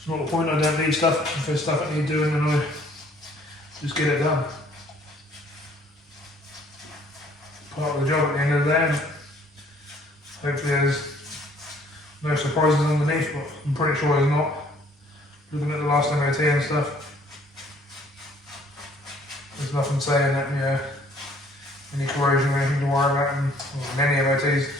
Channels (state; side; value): normal; both; correlation 0.59